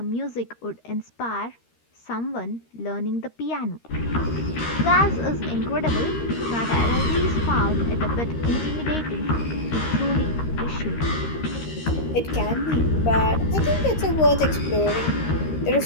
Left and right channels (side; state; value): right; late; 13 ms